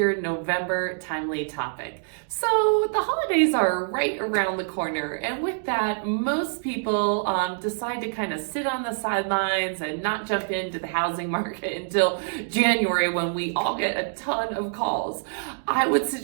November timely topic. So the holidays are right around the corner, and with that, most people decide to kind of sit on the sidelines and not jump into the housing market until January when we all get a ton of calls. I would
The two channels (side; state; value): left; silent; digital silence